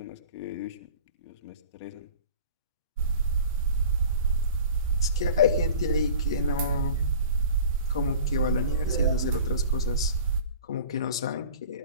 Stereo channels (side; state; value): both; inverted; correlation -0.41